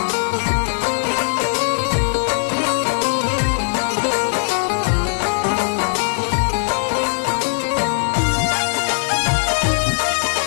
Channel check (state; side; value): silent; right; digital silence